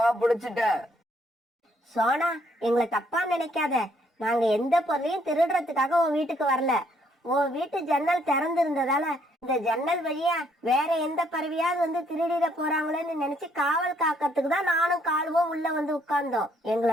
பிடிச்சிட்டேன். சோனா, எங்களை தப்பா நினைக்காத. நாங்க எந்த பொருளையும் திருடுறதுக்காக உன் வீட்டுக்கு வரல. உன் வீட்டு ஜன்னல் திறந்து இருந்ததால இந்த ஜன்னல் வழியா வேற எந்த பறவையாவது வந்து திருடிட போறாங்களேன்னு நினைச்சு காவல் காக்கிறதுக்கு தான் நானும் காலுவும் உள்ள வந்து உட்கார்ந்தோம்.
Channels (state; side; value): normal; both; correlation 0.68